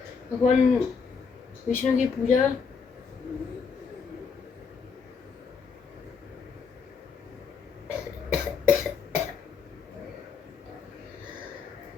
भगवान विष्णु की पूजा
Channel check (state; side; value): quieter; right; 5.7 dB